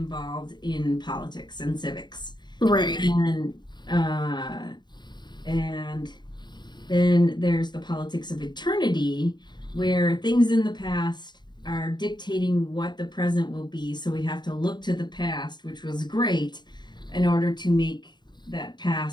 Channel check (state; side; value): late; right; 0.21 ms